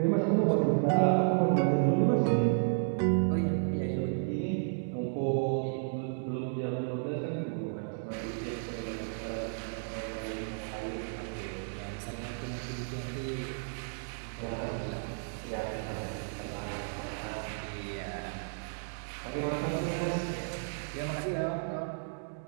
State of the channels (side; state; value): left; silent; digital silence